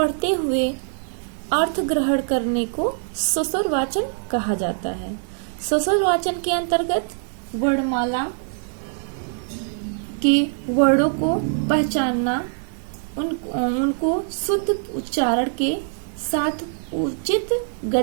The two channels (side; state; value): left; silent; digital silence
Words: हुए अर्थ ग्रहण करने को ससुर वाचन कहा जाता है। ससुर वाचन के अंतर्गत वर्णमाला के वर्णों को पहचानना, उनको शुद्ध उच्चारण के साथ उचित